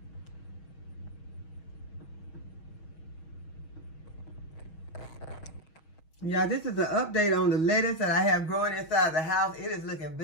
Yeah, this is an update on the lettuce that I have growing inside the house. It is looking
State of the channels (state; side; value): late; right; 6.3 ms